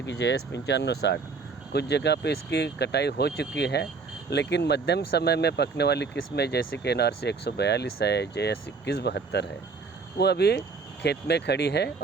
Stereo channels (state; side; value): quieter; left; 4.7 dB